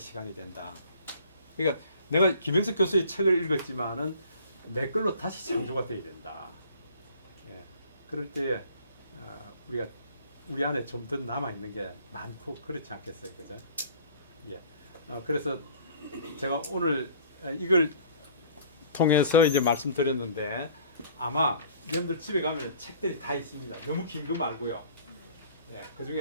된다. 그러니까 내가 김영석 교수의 책을 읽었지만은 내 걸로 다시 창조가 돼야 된다. 예. 그럴 때에 우리가 우리 안에 좀 더 남아 있는 게 많고 그렇지 않겠어요, 그죠? 예. 그래서 제가 오늘 이걸 통해서 이제 말씀드렸는데 아마 여러분들 집에 가면 책들이 다 있습니다. 너무 긴 거 말고요. 예. 그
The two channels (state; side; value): inverted; both; correlation -0.51